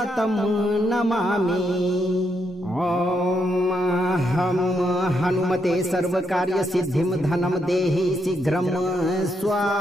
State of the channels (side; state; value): both; normal; correlation 0.79